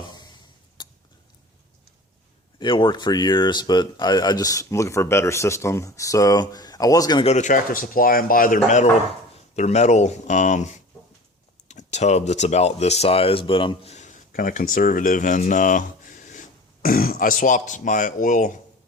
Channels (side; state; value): both; normal; correlation 0.40